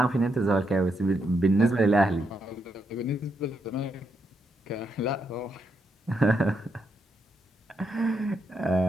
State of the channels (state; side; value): normal; both; correlation 0.80